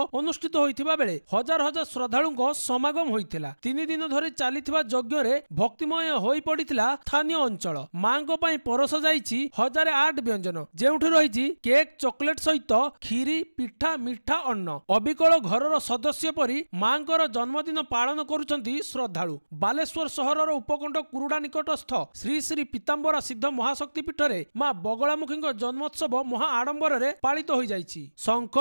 होइथिबा बेले हजार हजार श्रद्धालुंको समागम होइथिला। 3 दिन धरि चालिथिबा यज्ञ रे भक्तिमय होई पड़िथिला स्थानीय अंचल। मांको पई परस जाईछि 1008 व्यंजन जेउठु रहिछि केक चॉकलेट सहित खीरी पिठा मिठा अन्न। अबिकल घरर सदस्य परी मांकर जन्मदिन पालन करुछंती श्रद्धालु। बालेश्वर सहरर उपकंठ कुरुड़ा निकटस्थ श्री श्री पीताम्बरा सिद्ध महाशक्तिपीठ रे मां बगलामुखी जन्मोत्सव महा आडंबर रे पालित होई जाईछि। शंख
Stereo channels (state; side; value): inverted; both; correlation -1.00